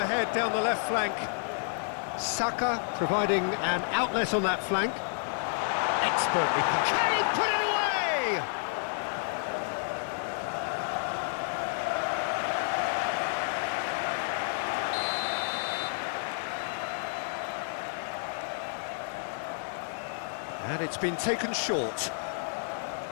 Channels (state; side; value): silent; right; digital silence